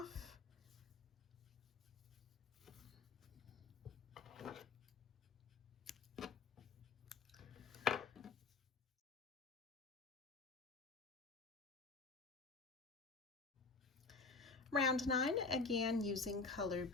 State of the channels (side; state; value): right; quieter; 4.3 dB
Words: Round 9, again using color